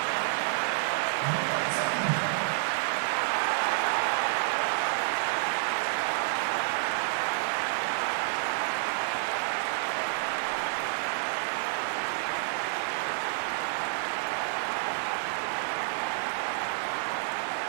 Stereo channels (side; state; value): left; silent; digital silence